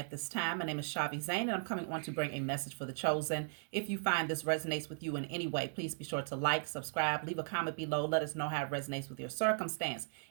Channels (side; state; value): left; silent; 53 dB below the other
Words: this time. My name is Shavi Zane, and I'm coming on to bring a message for the chosen. If you find this resonates with you in any way, please be sure to like, subscribe, leave a comment below. Let us know how it resonates with your circumstance.